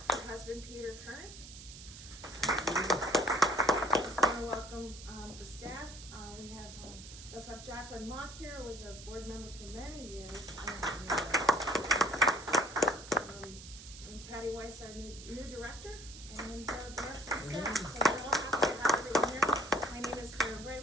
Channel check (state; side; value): noise; right; hiss, 15 dB below the sound